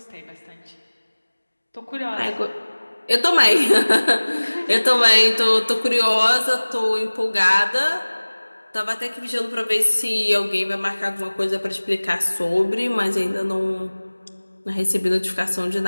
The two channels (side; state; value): both; inverted; correlation -1.00